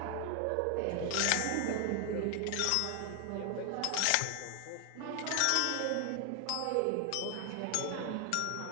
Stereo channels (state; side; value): different; both; correlation 0.00